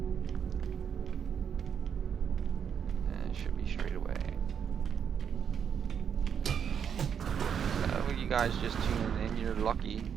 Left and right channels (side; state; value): left; quieter; 7.7 dB